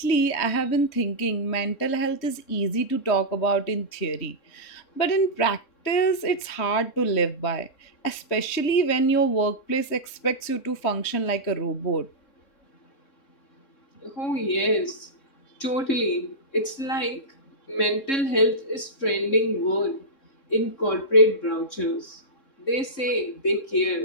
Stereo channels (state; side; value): late; right; 3.2 ms